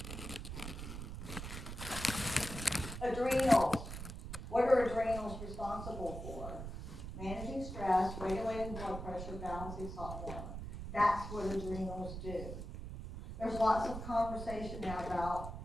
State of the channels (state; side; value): noise; right; rumble, 8 dB below the sound